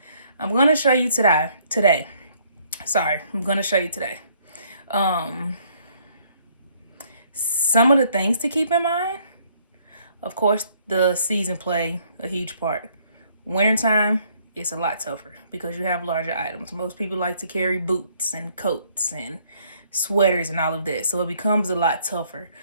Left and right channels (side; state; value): both; inverted; correlation -0.65